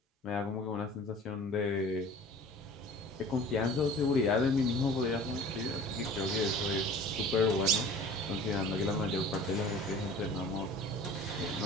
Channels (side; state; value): both; normal; correlation 0.43